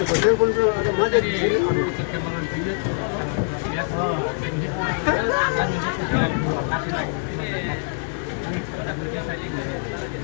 telepon ada macet di sini. Perkembangan video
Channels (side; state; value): right; silent; 63 dB below the other